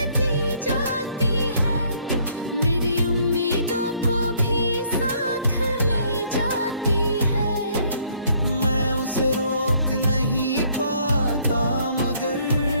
जाती है, मेरी उम्मीदों को भी साथ ले जाती है। मैं उसे रोक नहीं पाता, मगर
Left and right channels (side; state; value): both; inverted; correlation -0.64